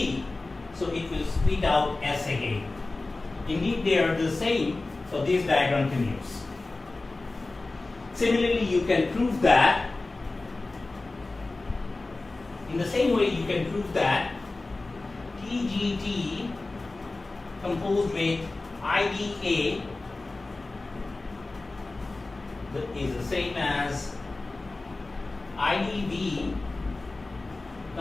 so it will spit out S again. Indeed, they are the same, so this diagram commutes. Similarly, you can prove that, in the same way you can prove that TGT composed with IDA is the same as IDV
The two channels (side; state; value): right; quieter; 3.2 dB